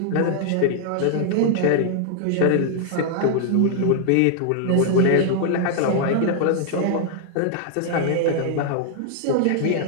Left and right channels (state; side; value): different; both; correlation 0.00